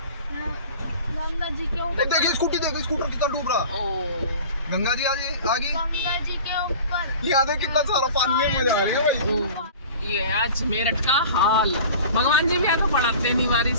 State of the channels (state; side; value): inverted; both; correlation -0.41